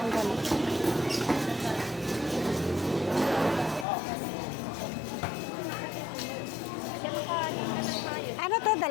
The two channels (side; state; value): right; drops out; at 3.9 s